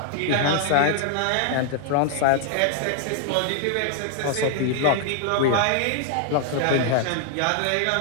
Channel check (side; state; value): both; different; correlation 0.00